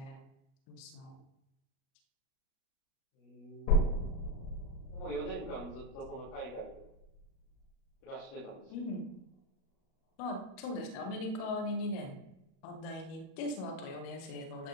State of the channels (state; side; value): late; right; 37 ms